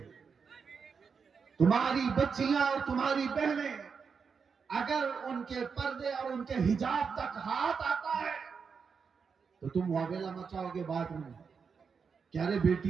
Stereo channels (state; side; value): quieter; left; 5.8 dB